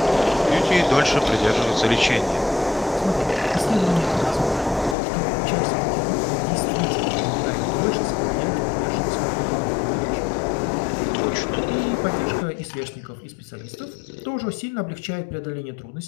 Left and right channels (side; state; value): right; drops out; at 5.0 s